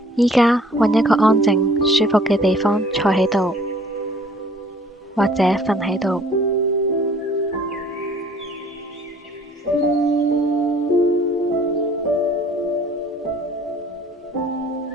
依家揾一個安靜、舒服嘅地方坐喺度，或者瞓喺度。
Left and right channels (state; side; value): normal; both; correlation 0.55